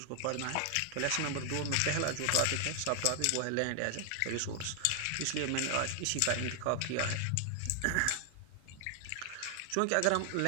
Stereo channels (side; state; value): both; different; correlation 0.00